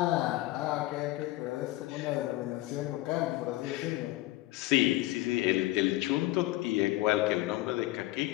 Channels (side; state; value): right; quieter; 18.0 dB